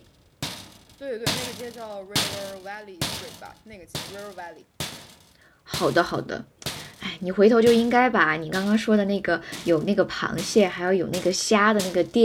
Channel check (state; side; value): identical; both; correlation 1.00